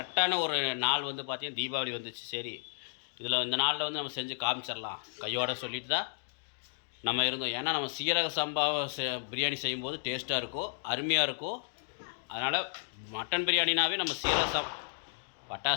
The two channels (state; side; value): silent; right; digital silence